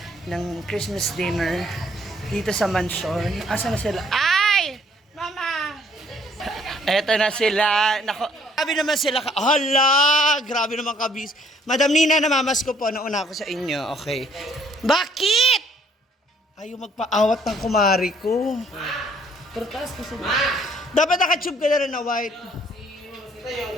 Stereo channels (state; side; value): normal; both; correlation 0.63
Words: ng Christmas dinner dito sa mansion. Asa na sila? Ay! Mama! Eto na sila. Nako, grabe naman sila. Hala! Grabe naman kabis. Madam Nina, namamas ko po. Nauna ako sa inyo. Okay. Bakit? Ayaw magpaawat ng kumari ko. Pertas ko sila. Dapat nakatube ka na rin na white.